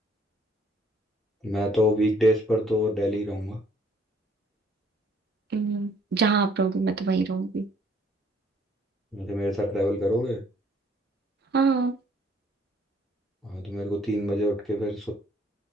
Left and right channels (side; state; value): both; normal; correlation 0.62